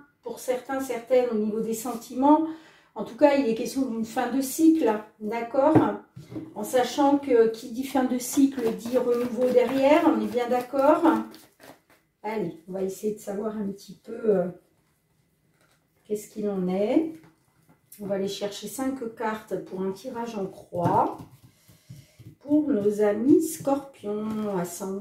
pour certains, certaines au niveau des sentiments. En tout cas, il est question d'une fin de cycle, d'accord? En sachant que qui dit fin de cycle dit renouveau derrière, on est bien d'accord? Allez, on va essayer de savoir un petit peu qu'est-ce qu'il en est. On va aller chercher 5 cartes pour un tirage en croix. Pour nos amis scorpions,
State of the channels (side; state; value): both; identical; correlation 1.00